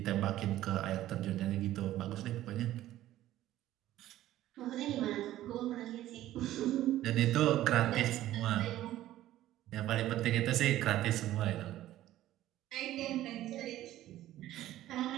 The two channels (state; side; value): quieter; left; 14.1 dB